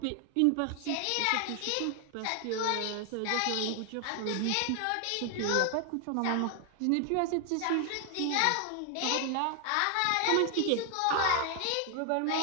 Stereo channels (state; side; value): different; both; correlation 0.00